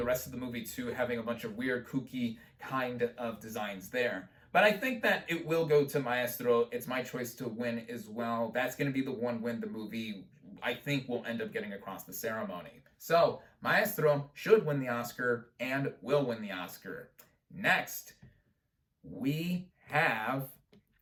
rest of the movie too, having a bunch of weird, kooky kind of designs there. But I think that it will go to Maestro. It's my choice to win as well. That's going to be the one win the movie I think will end up getting across the ceremony. So, Maestro should win the Oscar and will win the Oscar. Next, we have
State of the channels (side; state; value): both; identical; correlation 1.00